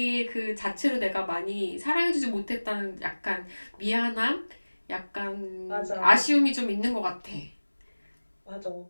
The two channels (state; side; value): inverted; both; correlation -1.00